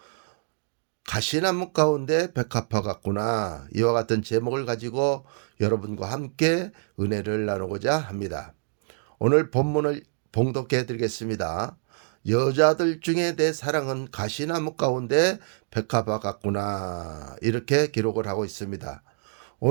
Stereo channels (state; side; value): silent; left; digital silence